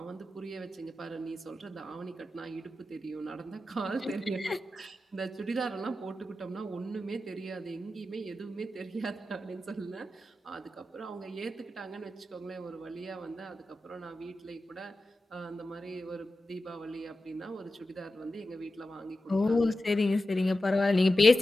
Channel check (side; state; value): both; normal; correlation 0.92